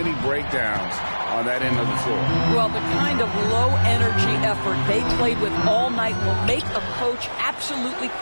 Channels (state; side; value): inverted; both; correlation -1.00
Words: breakdowns on that end of the floor. Well, the kind of low-energy effort they played with all night will make a coach absolutely